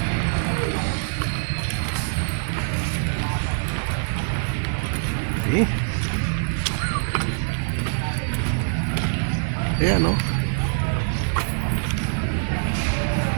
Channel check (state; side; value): silent; left; digital silence